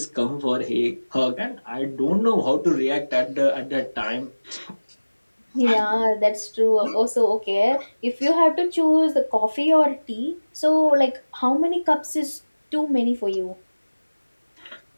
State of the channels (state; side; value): inverted; both; correlation -1.00